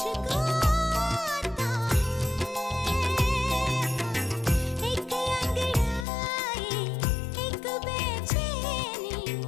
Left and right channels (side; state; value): right; drops out; at 6.1 s